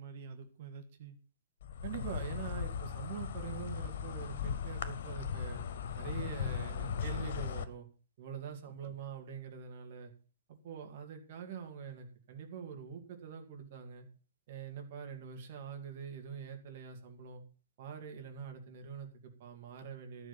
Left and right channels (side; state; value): both; inverted; correlation -0.44